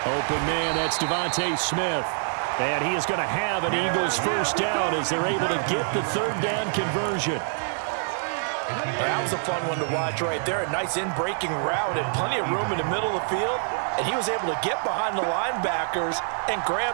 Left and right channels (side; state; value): left; silent; 58 dB below the other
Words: Open man, that's Devontae Smith. And he is going to have an Eagles first down as they're able to get the third down conversion. That was a fun one to watch right there. A nice in-breaking route and plenty of room in the middle of the field. And he was able to get behind the linebackers and